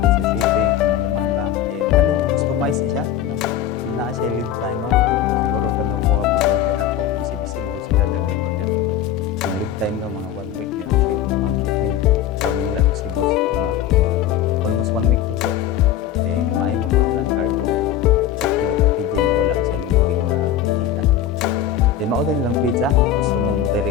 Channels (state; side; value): quieter; right; 10.3 dB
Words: sa shipping, kung nahuman ba. Eh, customize siya. Na siya lead time mo. Siguro kadang ko kapag order na ko, busy-busy mo sila dagay order. Ang lead time daw mga 1 week din ang shipment from Manila to Cebu, mga almost 1 week to. Then, maayo mo po lang cargo checking at packaging, wala sa lumping na kita na po. Then, mao din lang pizza, gusto mong